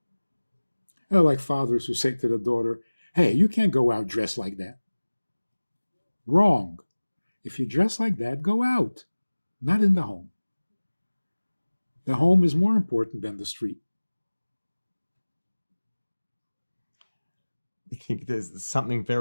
I like fathers who say to the daughter, hey, you can't go out dressed like that. Wrong. If you dress like that, go out, not in the home. The home is more important than the street. I think there's something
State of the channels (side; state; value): both; inverted; correlation -1.00